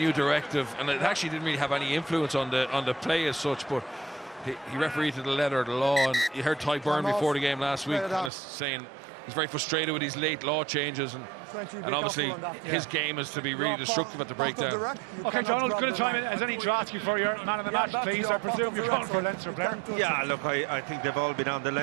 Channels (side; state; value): left; drops out; at 8.3 s